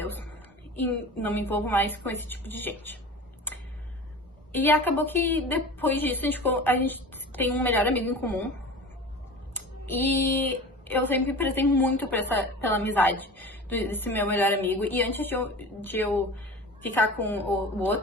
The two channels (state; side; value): normal; both; correlation 0.35